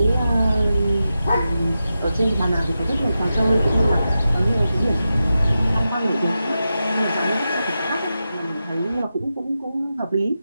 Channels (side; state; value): both; inverted; correlation -0.91